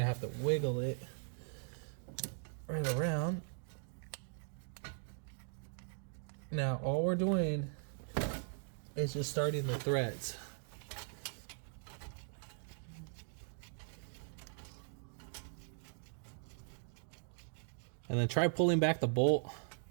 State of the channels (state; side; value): silent; left; digital silence